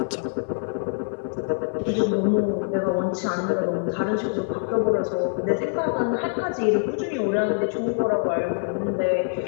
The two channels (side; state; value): right; silent; digital silence